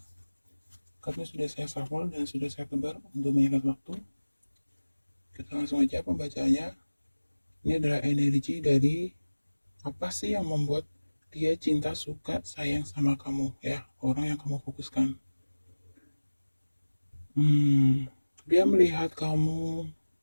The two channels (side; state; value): both; inverted; correlation -1.00